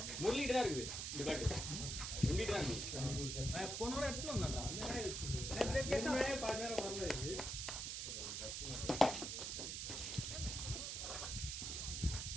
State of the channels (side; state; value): right; noise; hiss, 3 dB below the sound